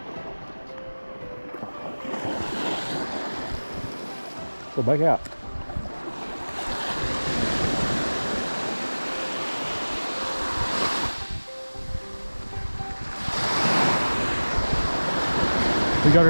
Go back out. We got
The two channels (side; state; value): both; inverted; correlation -1.00